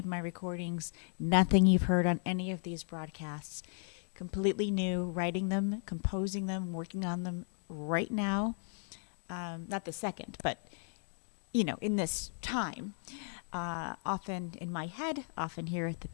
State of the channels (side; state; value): right; silent; 54 dB below the other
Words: my recordings, nothing you've heard on any of these broadcasts. Completely new, writing them, composing them, working on them right now. Not the second, but, in this time. Often in my head, often here at the